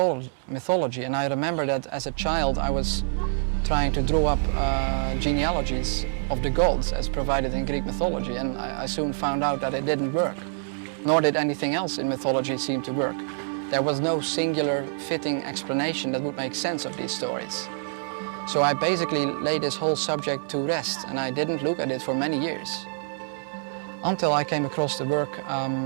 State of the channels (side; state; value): left; silent; digital silence